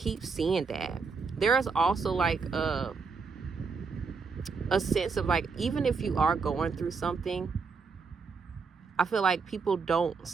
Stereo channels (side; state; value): left; quieter; 5.0 dB